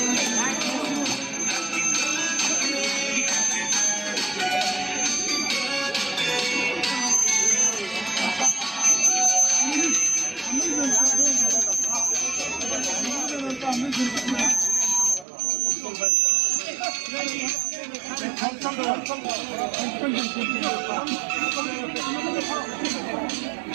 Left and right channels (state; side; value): drops out; left; at 15.2 s